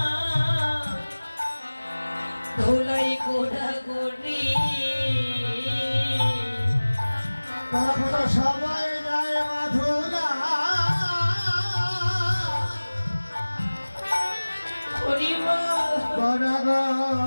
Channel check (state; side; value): inverted; both; correlation -1.00